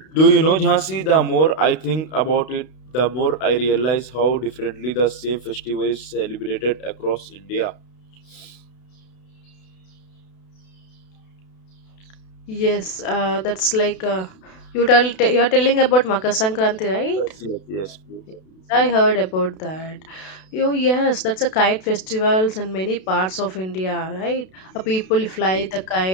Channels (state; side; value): late; right; 32 ms